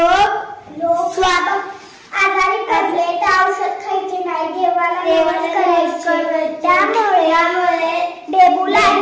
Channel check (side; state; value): both; identical; correlation 1.00